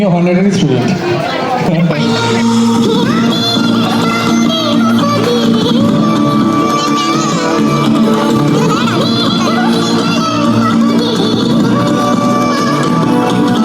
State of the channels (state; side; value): identical; both; correlation 1.00